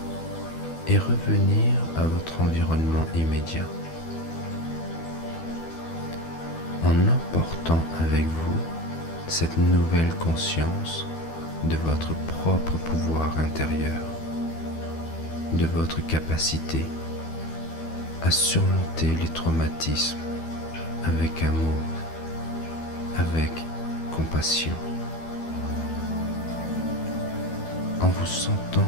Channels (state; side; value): late; right; 12 ms